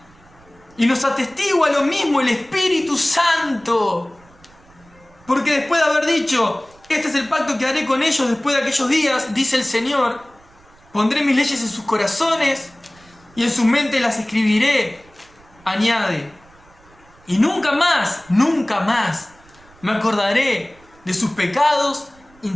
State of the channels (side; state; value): right; noise; rumble, 28 dB below the sound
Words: Y nos atestigua lo mismo el Espíritu Santo. Porque después de haber dicho: este es el pacto que haré con ellos después de aquellos días, dice el Señor, pondré mis leyes en sus corazones y en sus mentes las escribiré. Añade: y nunca más me acordaré de sus pecados y